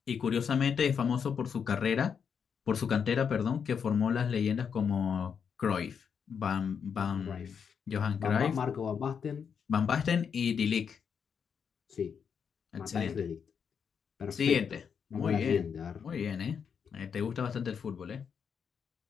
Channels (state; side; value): quieter; right; 6.9 dB